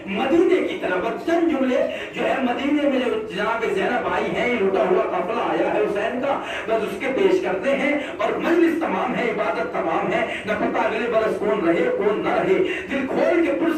مدینے کی طرف۔ چند جملے جو ہے مدینے میں جو جناب زینب آئی ہیں، یہ لوٹا ہوا قافلہ آیا ہے حسین کا، بس اس کے پیش کرتے ہیں اور مجلس تمام ہے، عبادت تمام ہے، نہ پتہ اگلے برس کون رہے کون نہ رہے۔ دل کھول کے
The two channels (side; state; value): both; identical; correlation 1.00